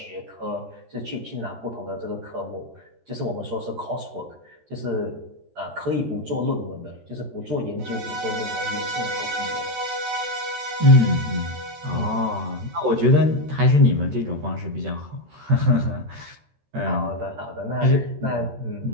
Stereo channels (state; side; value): late; left; 13 ms